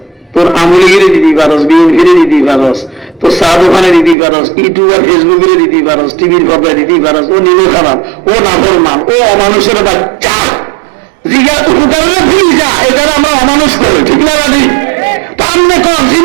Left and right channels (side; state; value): left; drops out; at 4.2 s